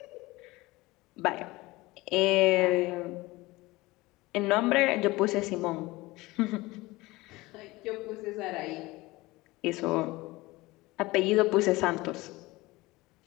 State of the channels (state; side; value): quieter; right; 20.8 dB